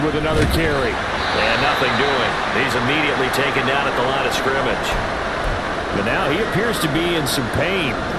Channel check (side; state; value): both; identical; correlation 1.00